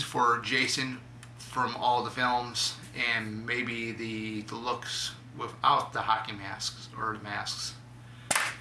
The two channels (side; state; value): both; identical; correlation 1.00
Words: for Jason from all the films, and maybe the looks without the hockey masks or the masks.